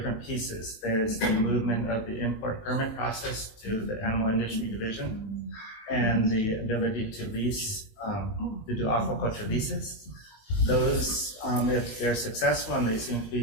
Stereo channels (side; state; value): right; late; 19 ms